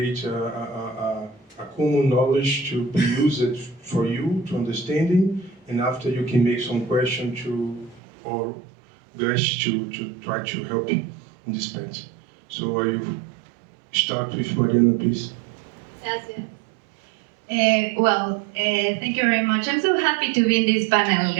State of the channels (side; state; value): left; drops out; at 8.0 s